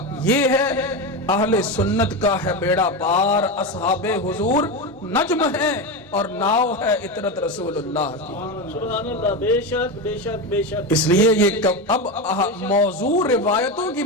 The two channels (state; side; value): normal; both; correlation 0.17